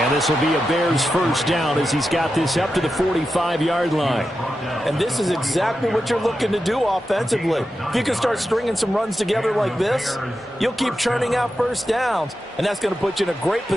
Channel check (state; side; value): normal; both; correlation 0.90